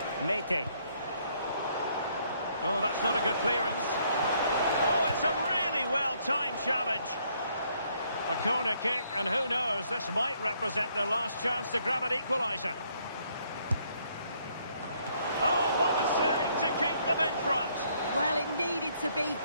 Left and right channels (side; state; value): both; inverted; correlation -0.69